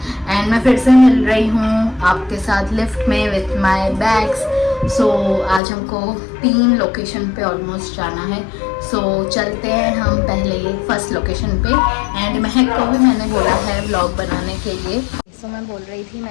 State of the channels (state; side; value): drops out; right; at 5.6 s